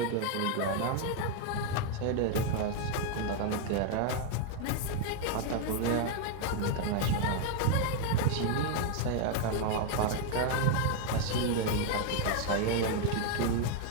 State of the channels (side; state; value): both; different; correlation 0.01